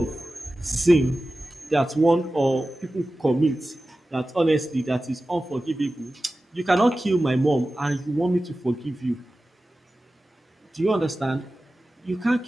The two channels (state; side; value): normal; both; correlation 0.95